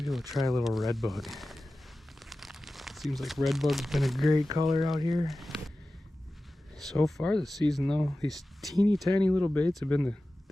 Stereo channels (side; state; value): both; normal; correlation 0.95